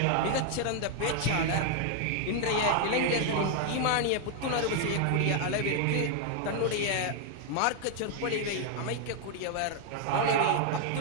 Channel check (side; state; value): both; different; correlation 0.01